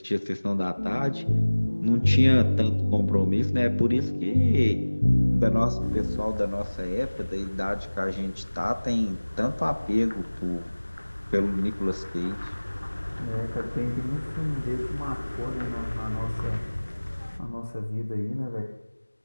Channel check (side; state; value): both; inverted; correlation -1.00